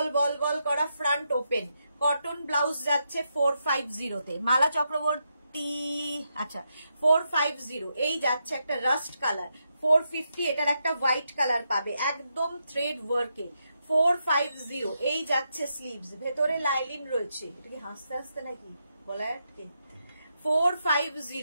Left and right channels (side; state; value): both; inverted; correlation -0.83